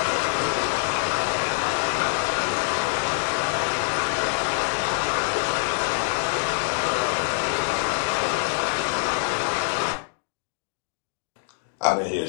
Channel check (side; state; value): right; silent; digital silence